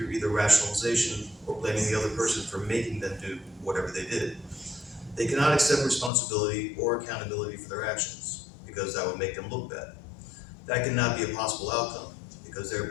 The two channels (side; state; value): right; drops out; at 6.1 s